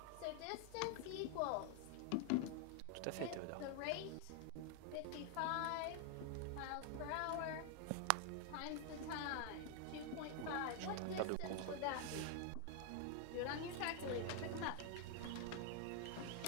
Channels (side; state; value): both; different; correlation 0.00